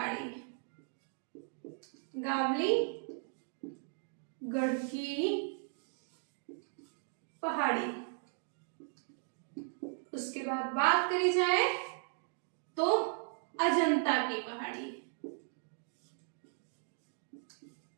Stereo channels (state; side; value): silent; left; 53 dB below the other